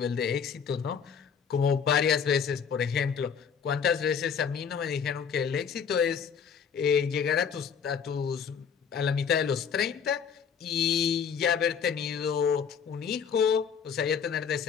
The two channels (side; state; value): right; quieter; 7.0 dB